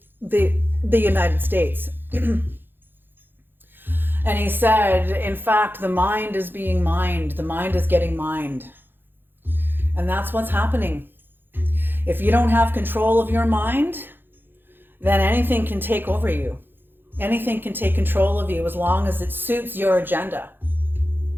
United States. And he said, in fact, the mind is being mined. The mind is getting mined. And that's what's happening. If you don't have control of your mind, then anything can take over you. Anything can take control of you as long as it suits your agenda.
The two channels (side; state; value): left; late; 0.099 ms